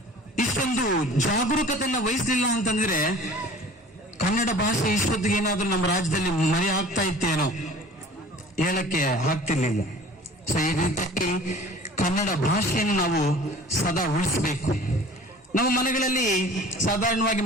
ಇಷ್ಟೊಂದು ಜಾಗರೂಕತೆಯನ್ನ ವಹಿಸಲಿಲ್ಲ ಅಂತಂದ್ರೆ ಕನ್ನಡ ಭಾಷೆ ಇಷ್ಟೊತ್ತಿಗೆ ಏನಾದ್ರೂ ನಮ್ಮ ರಾಜ್ಯದಲ್ಲಿ ಮರೆ ಆಗ್ತಾ ಇತ್ತೇನೋ ಹೇಳಕ್ಕೆ ಆಗ್ತಿರ್ಲಿಲ್ಲ. ಸೊ ಈ ರೀತಿಯಾಗಿ ಕನ್ನಡ ಭಾಷೆಯನ್ನು ನಾವು ಸದಾ ಉಳಿಸಬೇಕು. ನಮ್ಮ ಮನೆಗಳಲ್ಲಿ ಸಾಧಾರಣವಾಗಿ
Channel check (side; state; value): both; normal; correlation 0.45